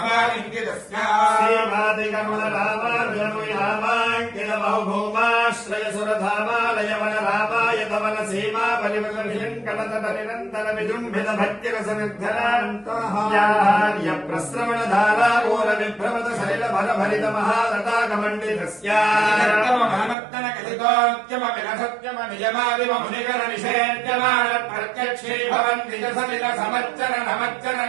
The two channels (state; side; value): drops out; left; at 20.2 s